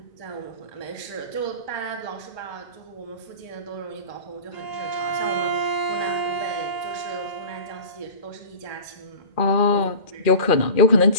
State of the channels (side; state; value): right; late; 1.8 ms